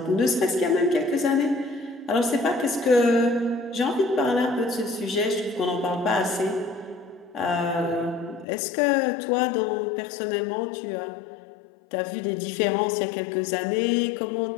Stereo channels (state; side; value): drops out; right; at 8.5 s